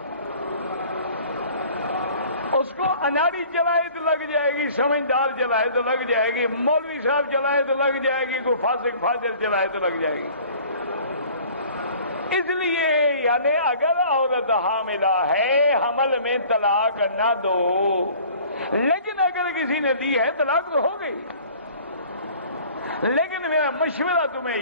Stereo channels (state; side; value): inverted; both; correlation -0.49